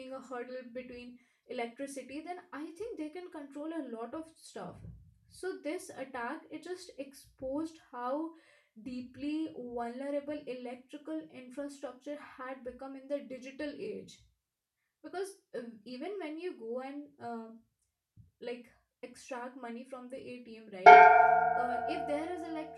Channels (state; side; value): identical; both; correlation 1.00